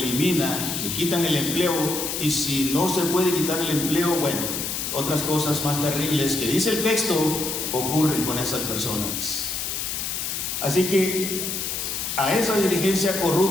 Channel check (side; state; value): left; noise; hiss, 3 dB below the sound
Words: le quitan el empleo, y si no se puede quitar el empleo, otras cosas más terribles que dice el texto ocurren con esas personas. Así que a esa dirigencia